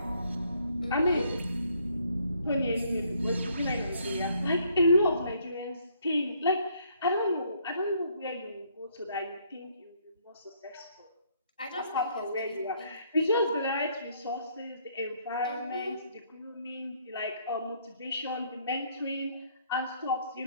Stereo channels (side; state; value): both; inverted; correlation -0.67